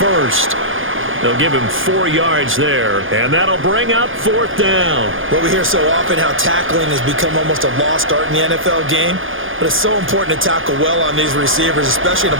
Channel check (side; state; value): left; late; 0.58 ms